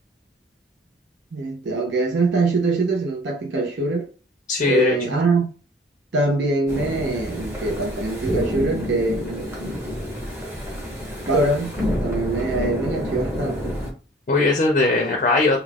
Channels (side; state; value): both; normal; correlation 0.49